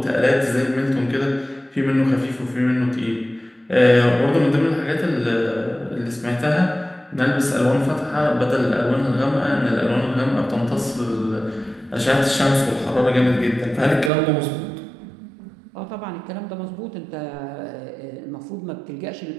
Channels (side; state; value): left; drops out; at 14.1 s